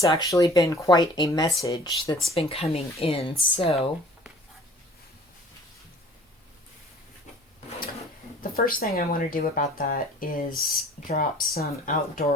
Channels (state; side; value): normal; both; correlation 0.49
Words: actually been quite a message that's been coming in. So the first thing I want to do about that is drop some